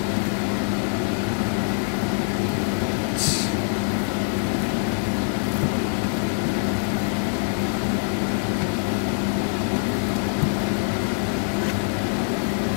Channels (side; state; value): right; silent; 61 dB below the other